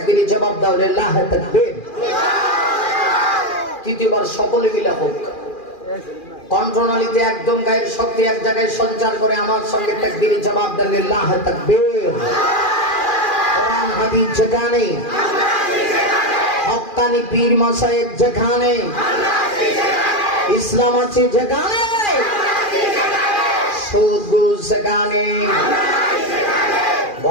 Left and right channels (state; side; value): late; right; 2.4 ms